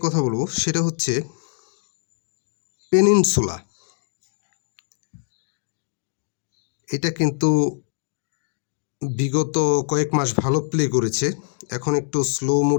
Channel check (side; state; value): right; silent; 60 dB below the other